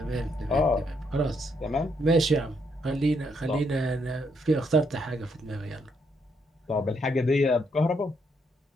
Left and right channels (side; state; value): both; normal; correlation 0.75